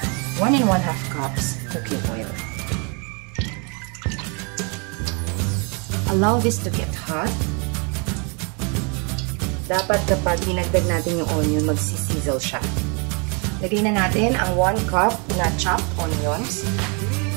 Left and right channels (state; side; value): quieter; left; 34.5 dB